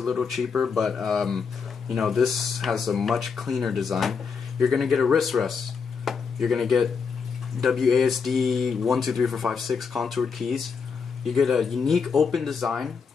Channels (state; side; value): quieter; right; 5.7 dB